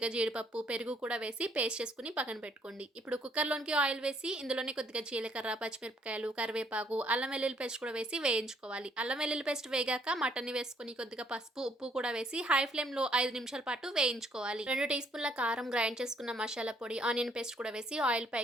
జీడిపప్పు, పెరుగు కూడా వేసి పేస్ట్ చేసుకొని పక్కన పెట్టుకోండి. ఇప్పుడు కుక్కర్‌లోనికి ఆయిల్ వేసి ఇందులోనే కొద్దిగా జీలకర్ర, పచ్చిమిరపకాయలు, కరివేపాకు, అల్లం వెల్లుల్లి పేస్ట్ కూడా వేసి వేయించుకోవాలి. అల్లం వెల్లుల్లి పేస్ట్ వేగాక మటన్‌ని వేసుకొని కొద్దిగా పసుపు, ఉప్పు కూడా వేసి హై ఫ్లేమ్‌లో 5 నిమిషాల పాటు వేయించుకోవాలి. 2 టీ స్పూన్ల కారం, గ్రైండ్ చేసుకున్న మసాలా పొడి, ఆనియన్ పేస్ట్ కూడా వేసి ఆయిల్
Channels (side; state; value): both; normal; correlation 0.67